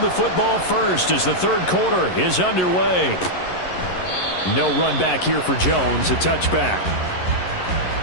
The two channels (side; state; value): right; late; 11 ms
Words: the football first as the third quarter is underway. No run back here for Jones. A touchback.